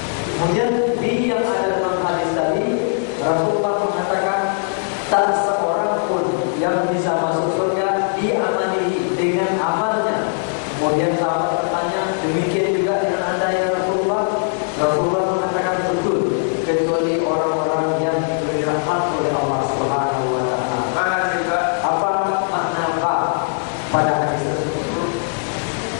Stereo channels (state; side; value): silent; right; digital silence